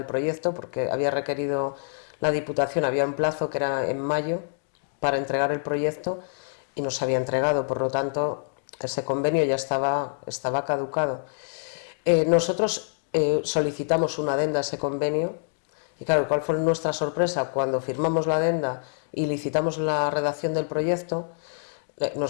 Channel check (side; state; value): right; silent; digital silence